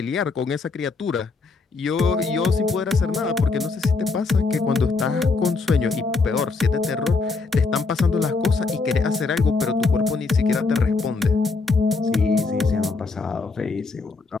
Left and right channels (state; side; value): quieter; right; 4.1 dB